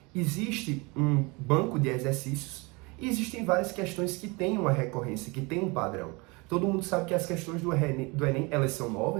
existe um banco de exercícios e existem várias questões que têm uma recorrência, que têm um padrão. Todo mundo sabe que as questões do Enem, elas são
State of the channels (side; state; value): left; quieter; 27.3 dB